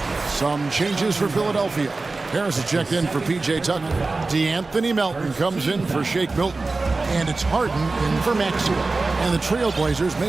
Some changes for Philadelphia. Harris is checked in for P.J. Tucker. DeAnthony Melton comes in for Shake Milton. And it's Harden in for Maxey. And the Trailblazers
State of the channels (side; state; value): left; quieter; 3.6 dB